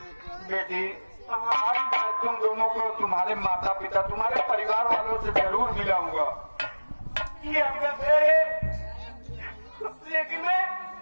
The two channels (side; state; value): both; inverted; correlation -1.00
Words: बेटी आज मैं तुम दोनों को तुम्हारे माता पिता, तुम्हारे परिवार वालों से जरूर मिलाऊंगा। ये आपका घर है, लेकिन मैं